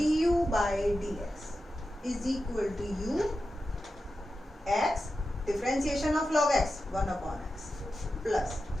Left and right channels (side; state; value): both; normal; correlation 0.91